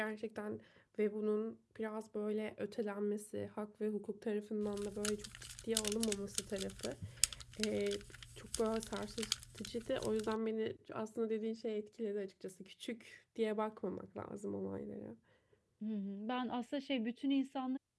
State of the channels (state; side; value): identical; both; correlation 1.00